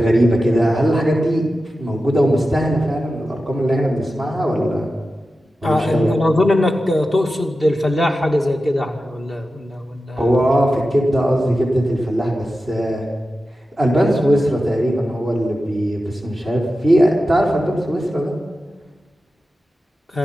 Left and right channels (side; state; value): both; normal; correlation 0.93